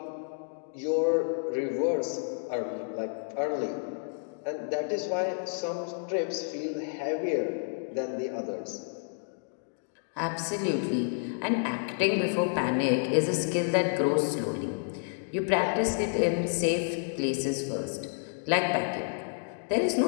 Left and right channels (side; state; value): right; silent; digital silence